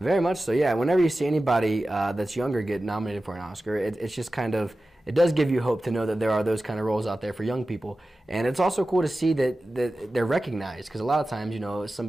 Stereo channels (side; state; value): both; normal; correlation 0.95